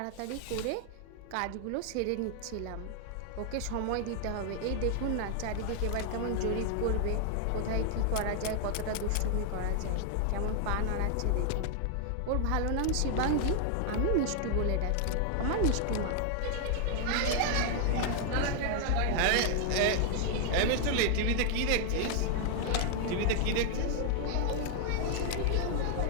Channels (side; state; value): both; different; correlation 0.00